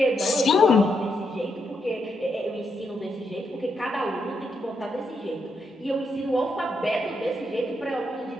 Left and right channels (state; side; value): normal; both; correlation 0.80